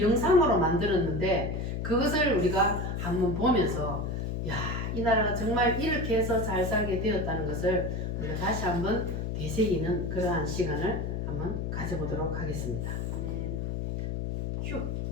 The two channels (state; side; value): noise; left; hum, 2 dB below the sound